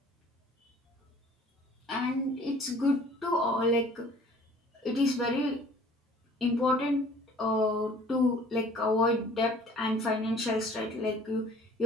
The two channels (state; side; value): normal; both; correlation 0.51